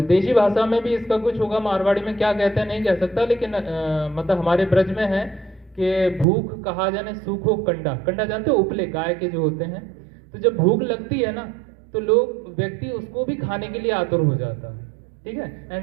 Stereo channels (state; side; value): drops out; left; at 6.2 s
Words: देशी भाषा में भी इसका कुछ होगा, मारवाड़ी में क्या कहते हैं नहीं कह सकता, लेकिन मतलब हमारे ब्रज में है कि भूख कहा जाने सूखो कंडा। कंडा जानते हो? उपले गाय के जो होते हैं। तो जब भूख लगती है ना तो व्यक्ति उसको भी खाने के लिए आतुर हो जाता है, ठीक है।